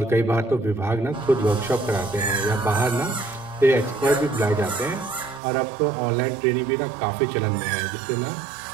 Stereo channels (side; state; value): left; drops out; at 5.4 s